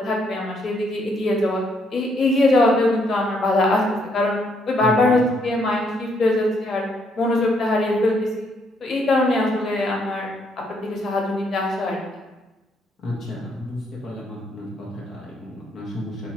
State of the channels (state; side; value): normal; both; correlation 0.72